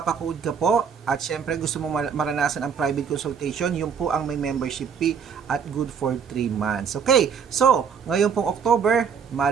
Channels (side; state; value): left; quieter; 6.8 dB